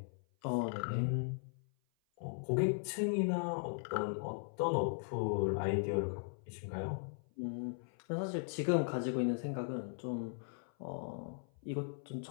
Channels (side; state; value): right; silent; 52 dB below the other